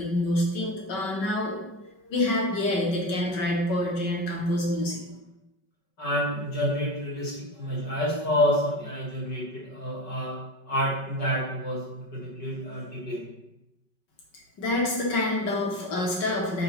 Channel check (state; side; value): late; right; 5.3 ms